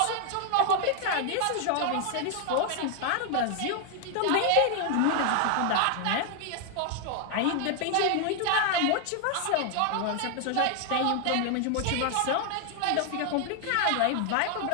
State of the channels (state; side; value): different; both; correlation 0.00